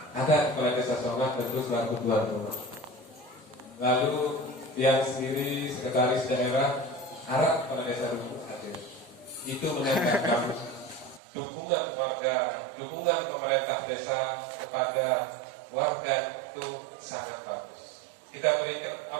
ada kepala desa Songat tentu selaku tuan rumah. Lalu yang sendiri sekretaris daerah arah kepala desa Rumput Hadir. Itu menandakan dukungan warga, dukungan pemerintah desa kepada warga itu sangat bagus. Kita berikan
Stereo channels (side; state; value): left; drops out; at 11.2 s